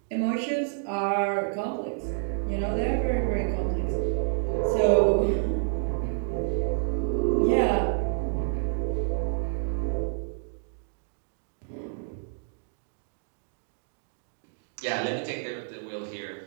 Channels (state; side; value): silent; left; digital silence